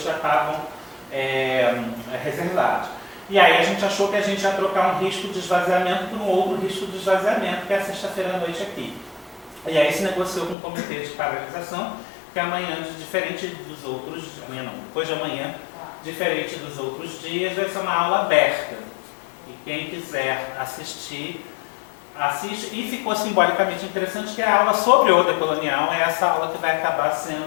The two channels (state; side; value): drops out; right; at 10.6 s